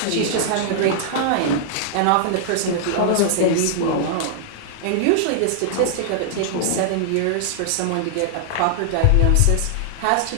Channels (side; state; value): both; different; correlation -0.01